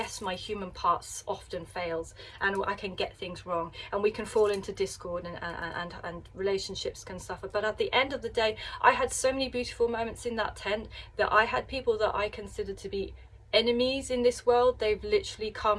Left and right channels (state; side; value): identical; both; correlation 1.00